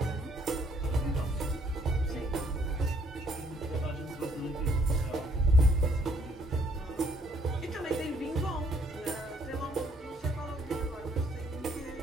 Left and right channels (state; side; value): normal; both; correlation 0.66